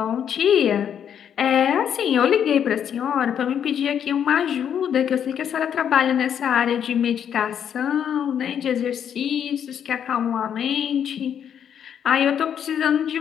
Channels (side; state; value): right; quieter; 8.7 dB